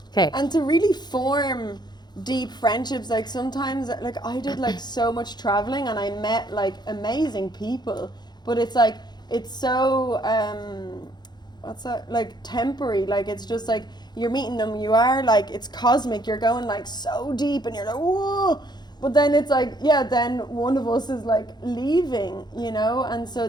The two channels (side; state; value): right; late; 0.21 ms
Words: okay. And to really form deep friendships, like sometimes, like I did like so much traveling and I met like amazing people, but it's like it's so what's that, like temporary, like it's just like you're meeting them, you are like, it's cosmic, you're going like so deep and you're like whoa, but then it's like, yeah, then one of us is like leaving, you know. And so